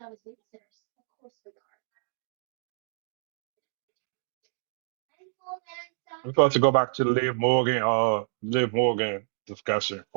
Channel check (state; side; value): silent; left; digital silence